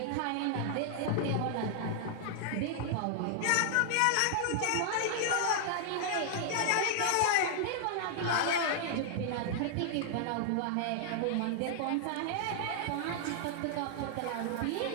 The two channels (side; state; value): both; different; correlation -0.01